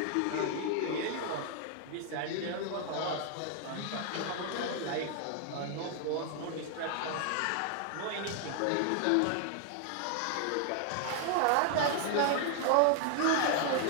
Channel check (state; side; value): different; both; correlation 0.00